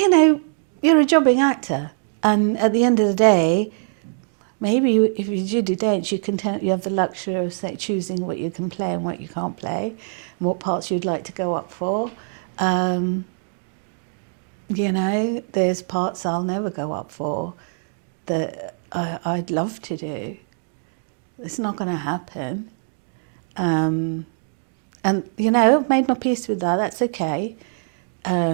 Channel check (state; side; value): silent; left; 64 dB below the other